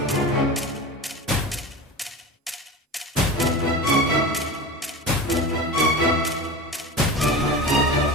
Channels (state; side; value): normal; both; correlation 0.30